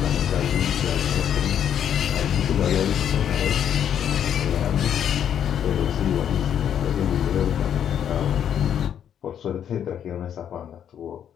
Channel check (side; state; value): right; quieter; 9.2 dB